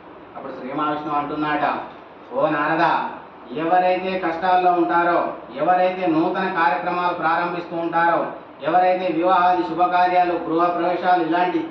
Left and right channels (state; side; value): identical; both; correlation 1.00